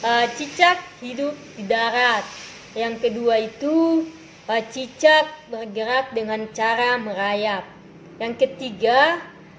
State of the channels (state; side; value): identical; both; correlation 1.00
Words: cicak hidup di darat. Yang kedua itu cicak bergerak dengan cara merayap. Yang ketiga,